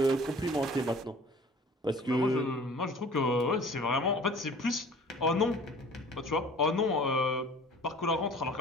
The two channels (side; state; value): both; normal; correlation 0.47